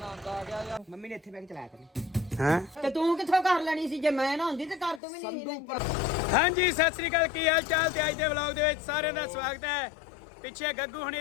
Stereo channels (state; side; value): drops out; right; at 5.0 s